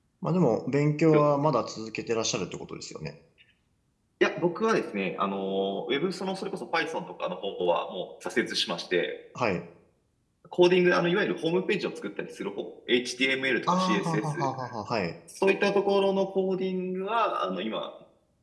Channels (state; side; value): identical; both; correlation 1.00